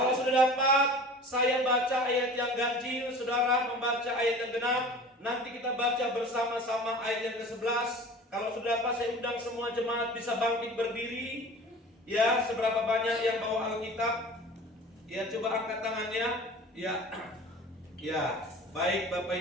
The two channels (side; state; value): both; normal; correlation 0.40